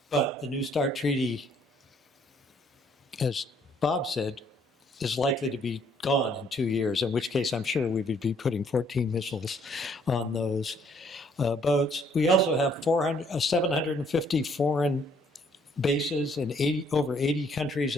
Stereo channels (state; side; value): normal; both; correlation 0.64